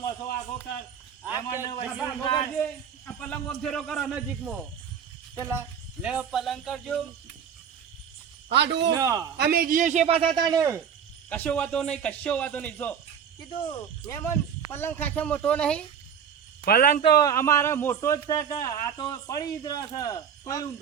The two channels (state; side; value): quieter; left; 7.8 dB